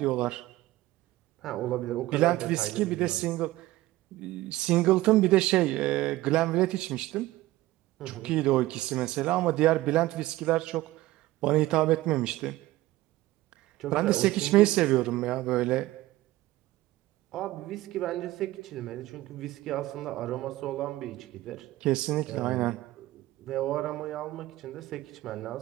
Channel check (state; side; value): quieter; left; 17.2 dB